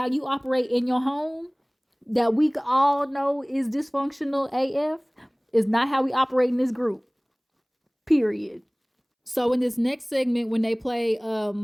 you operate in your home that we all know is dysfunctional AF is not how we operate in this group, period. So in this next segment, when they play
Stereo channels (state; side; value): identical; both; correlation 1.00